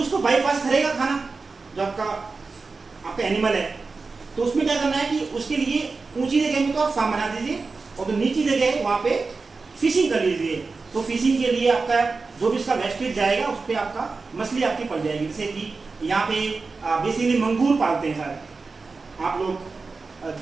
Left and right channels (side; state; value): left; quieter; 4.2 dB